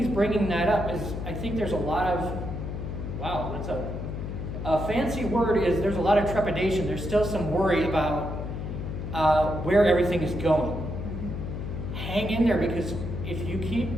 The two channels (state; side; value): noise; left; hum, 6 dB below the sound